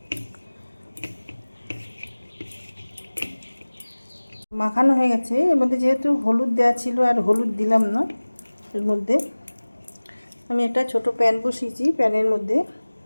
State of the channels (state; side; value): inverted; both; correlation -1.00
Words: মাখানো হয়ে গেছে। এর মধ্যে যেহেতু হলুদ দেওয়া ছিল আর হলুদ দিলাম না, এর মধ্যে আমি একটা ছোট প্যান বসিয়েছি, প্যানের মধ্যে